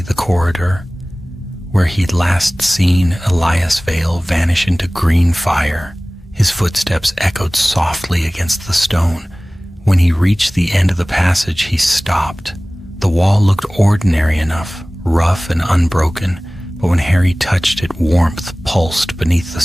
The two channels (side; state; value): both; normal; correlation 0.98